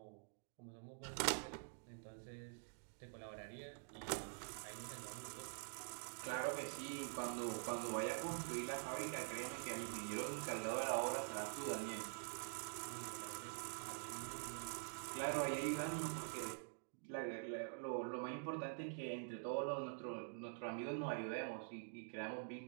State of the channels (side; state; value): left; silent; digital silence